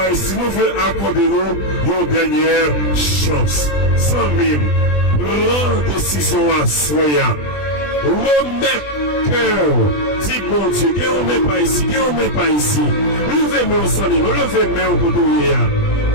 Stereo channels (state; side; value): late; right; 20 ms